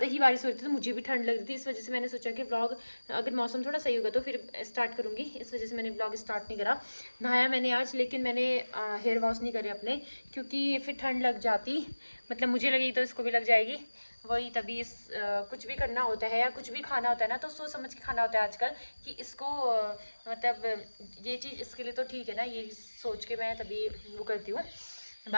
ही बारिश हो रही थी तो मुझे भी ठंड लग रही थी, इस वजह से मैंने सोचा कि ब्लॉग अगर मौसम थोड़ा सही होगा तो फिर स्टार्ट करूँगी। इस वजह से मैंने ब्लॉग स्टार्ट नहीं करा। नहाया मैंने आज, लेकिन मैंने हेयर वॉश नहीं करे अपने, क्योंकि फिर ठंड लग जाती, मतलब मुझे लगी तो इसको भी लग जाएगी। वही तभी कुछ भी करना होता है या कुछ भी खाना होता है ना तो सोच समझ के खाना होता है आजकल कि इसको मतलब ये चीज़ इसके लिए तो ठीक है ना, ये सोच के मैं तभी वो करती हूँ।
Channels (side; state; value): both; inverted; correlation -1.00